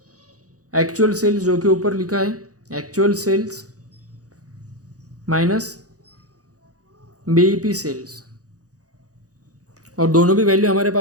actual sales, जो कि ऊपर लिखा है actual sales minus BEP sales. और दोनों भी वैल्यू हमारे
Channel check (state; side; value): late; left; 0.67 ms